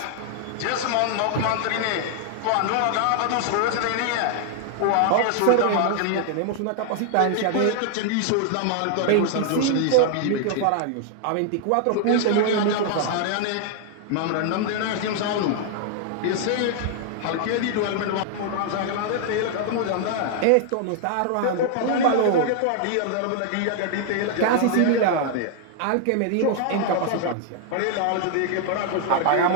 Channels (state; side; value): different; both; correlation 0.00